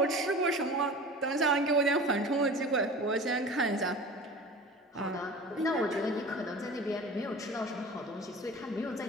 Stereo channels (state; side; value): normal; both; correlation 0.37